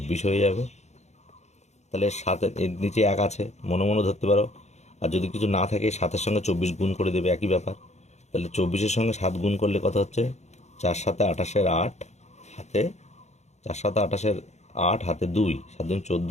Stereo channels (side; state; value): right; late; 0.33 ms